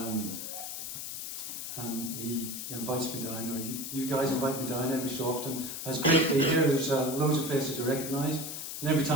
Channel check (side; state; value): left; noise; hiss, 6 dB below the sound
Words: he invites me down, or you guys invite me down every so often. It's great to be here. There's loads of faces to recognise. And every